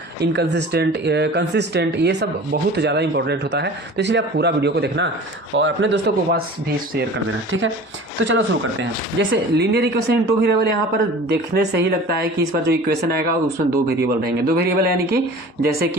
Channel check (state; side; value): normal; both; correlation 0.41